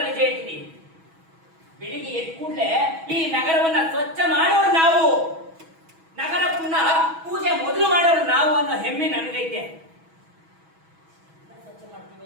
ನಿಜ ಹೇಳ್ತೀನಿ, ಬೆಳಿಗ್ಗೆ ಎದ್ದ ಕೂಡಲೇ ಈ ನಗರವನ್ನ ಸ್ವಚ್ಛ ಮಾಡೋರು ನಾವು, ನಗರ ಪುನಃ ಪೂಜೆ ಮೊದಲು ಮಾಡೋರು ನಾವು ಅನ್ನೋ ಹೆಮ್ಮೆ ನನಗೈತೆ. ಸ್ವಚ್ಛ ಮಾಡ್ತೀವಿ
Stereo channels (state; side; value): late; left; 6.2 ms